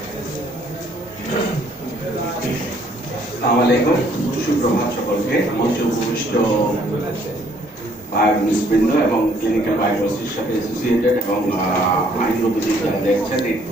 আসসালামু আলাইকুম, সুপ্রভাত সকলকে। মঞ্চে উপবিষ্ট বায়োকেমিস্টবৃন্দ এবং ক্লিনিক্যাল বায়োকেমিস্ট্রির সাথে অ্যাসোসিয়েটেড এবং আইনগতদের যারা দেখছেন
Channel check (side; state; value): both; normal; correlation 0.64